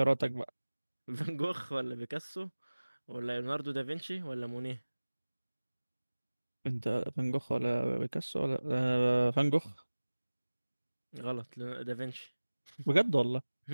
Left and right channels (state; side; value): inverted; both; correlation -1.00